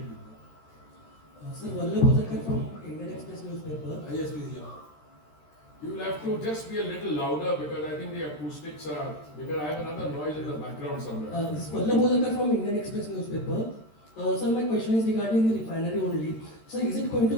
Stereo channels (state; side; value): late; right; 13 ms